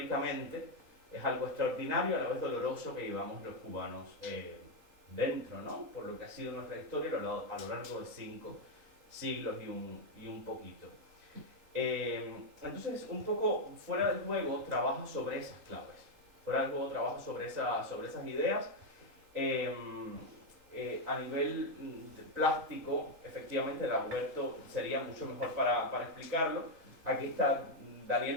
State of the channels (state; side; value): late; left; 4.1 ms